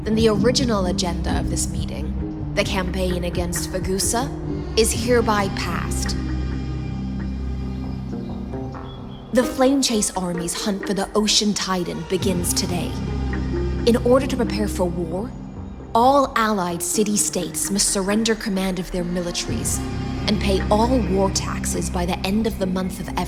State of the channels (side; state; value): both; identical; correlation 1.00